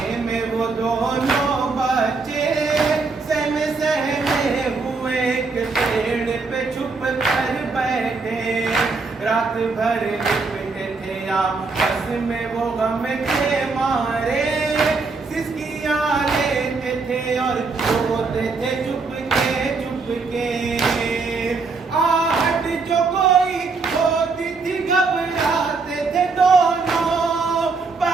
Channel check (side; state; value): left; quieter; 4.2 dB